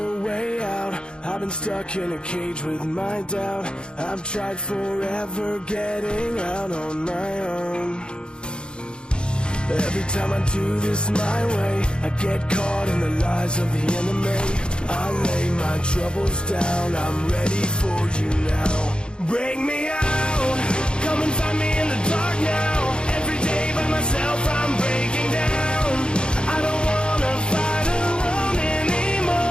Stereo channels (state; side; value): late; right; 0.052 ms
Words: way out. I've been stuck in a cage with my doubt. I've tried forever getting out on my own. Every time I do this my way, I get caught in the lies of the enemy. I lay my troubles down, I'm ready for you now. Bring me out, come and find me in the dark now. Every day by myself I'm breaking down. I don't wanna fight alone